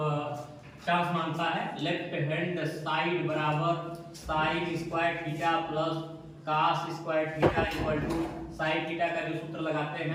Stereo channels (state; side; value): identical; both; correlation 1.00